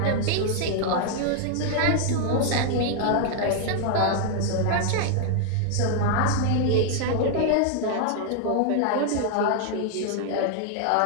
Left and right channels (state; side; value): different; both; correlation 0.00